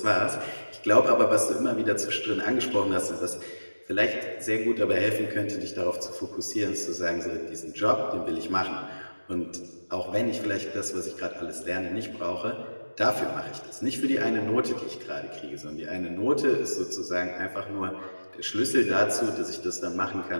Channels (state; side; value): inverted; both; correlation -1.00